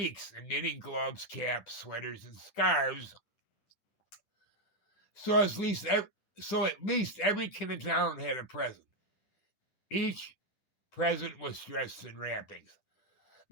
in knitting gloves, caps, sweaters, and scarves. So at least every kid in town had a present. Each present was dressed in wrappings.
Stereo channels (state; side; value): late; right; 10 ms